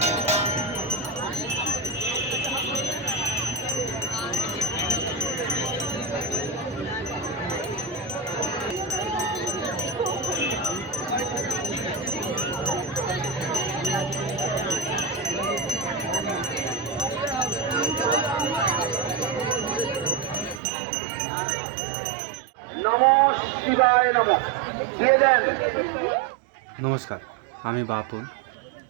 শিবায় নমঃ দিয়ে দেন। নমস্কার, আমি বাপন।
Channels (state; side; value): drops out; left; at 20.6 s